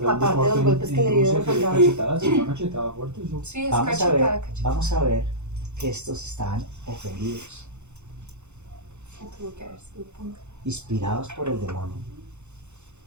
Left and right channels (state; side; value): late; left; 0.83 ms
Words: Aparte de los en- golpes que en le dieron Rusia, al soldado. cachetadas, una cachetada fuerte, eso. Sí, es Vamos a cachetada, ver, cachetada. vamos a ver que estos estaban ofendidos, Sí, tuvo que haber sido punta. inspirados por el demonio,